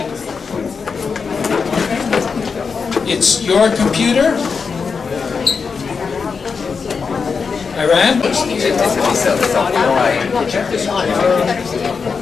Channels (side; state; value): right; quieter; 5.4 dB